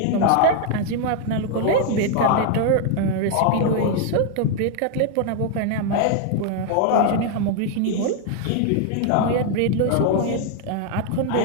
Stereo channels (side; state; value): both; different; correlation 0.00